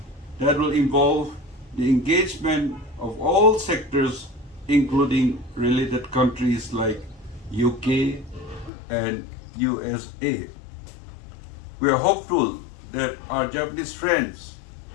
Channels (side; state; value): right; drops out; at 8.7 s